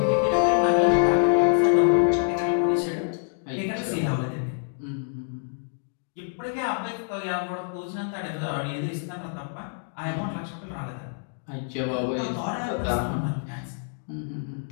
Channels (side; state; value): right; silent; digital silence